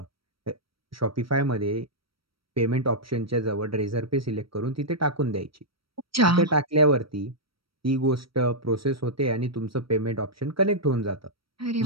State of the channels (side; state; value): left; late; 0.75 ms